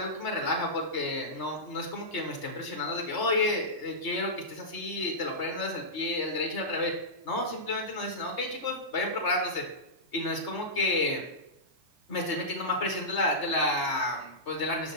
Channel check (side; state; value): right; late; 3.3 ms